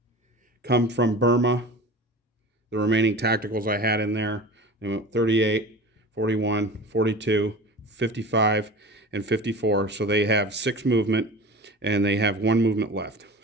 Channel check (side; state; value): both; normal; correlation 0.36